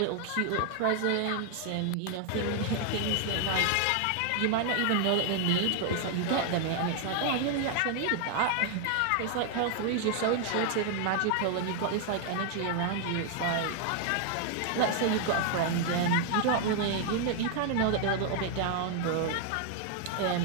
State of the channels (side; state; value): both; different; correlation 0.00